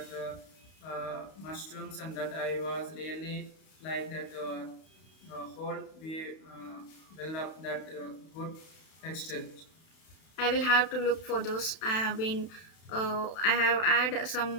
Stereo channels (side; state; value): right; late; 32 ms